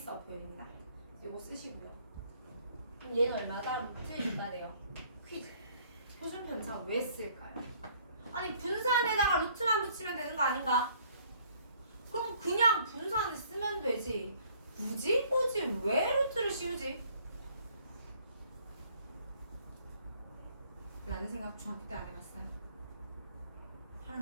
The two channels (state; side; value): inverted; both; correlation -0.61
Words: 표현입니다. 이거 쓰시고요. 그럼 얘는 얼마다? 루트 2가 돼요. 퀴즈. 표준 편차 왜 쓸까요? 아니 분산에다가 루트만 붙이면 되는 거 아닌가? 그럼 그냥 분산을 쓰면 되지. 굳이 왜 루트를 씌우지? 라는 생각 중학교 때 안 해봤어요.